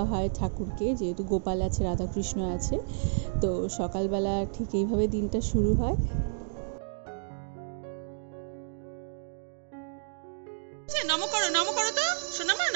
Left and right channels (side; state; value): left; silent; digital silence